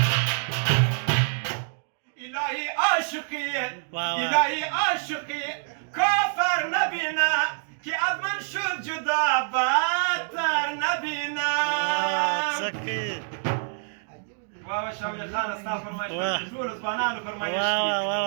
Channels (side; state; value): left; silent; digital silence